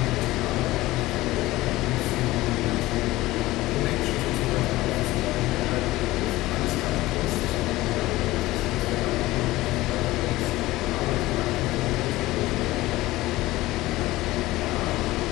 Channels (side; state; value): right; quieter; 18.0 dB